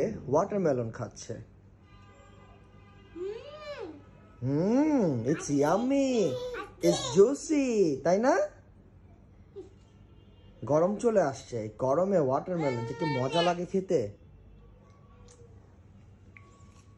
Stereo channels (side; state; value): both; identical; correlation 1.00